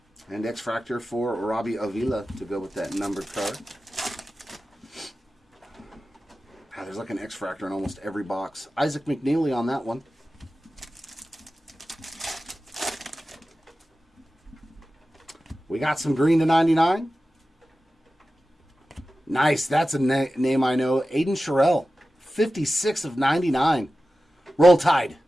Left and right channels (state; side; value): normal; both; correlation 0.94